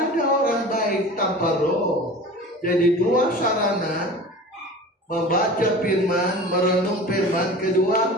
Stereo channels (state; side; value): normal; both; correlation 0.37